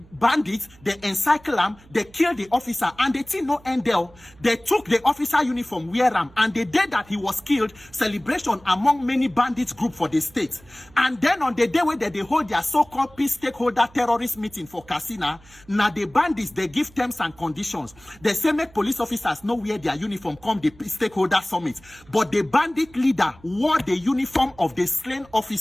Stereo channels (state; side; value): noise; right; hum, 26 dB below the sound